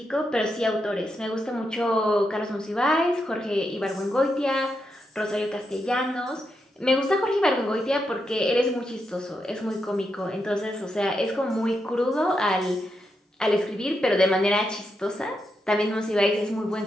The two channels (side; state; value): both; normal; correlation 0.84